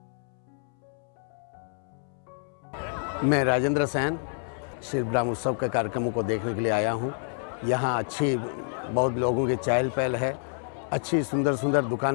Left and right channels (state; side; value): silent; right; 59 dB below the other